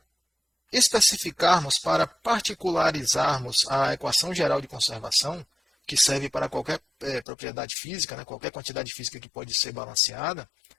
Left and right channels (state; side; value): drops out; right; at 7.2 s